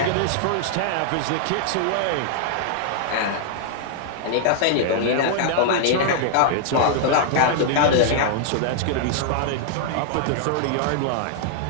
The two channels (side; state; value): both; different; correlation -0.01